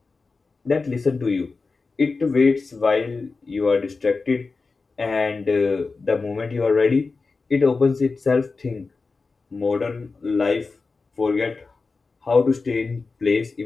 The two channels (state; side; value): quieter; right; 4.1 dB